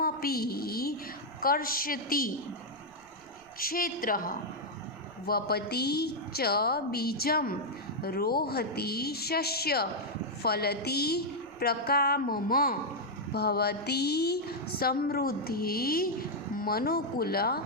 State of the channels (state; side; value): noise; right; rumble, 28 dB below the sound